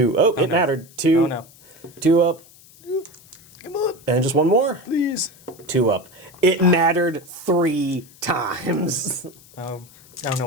Oh, it mattered. 2. Oh no. 2 up. Come on. And just 1 more. Please. 2 up. It mattered 3 times. Oh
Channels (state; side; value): noise; left; hiss, 24 dB below the sound